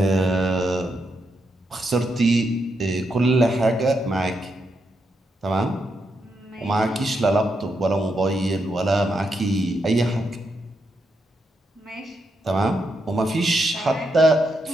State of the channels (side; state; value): both; normal; correlation 0.82